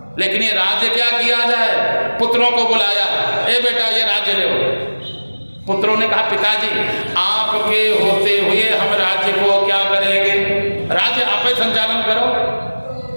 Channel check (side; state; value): both; inverted; correlation -1.00